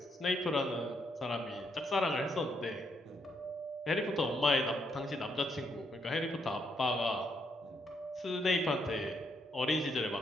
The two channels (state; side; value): normal; both; correlation 0.75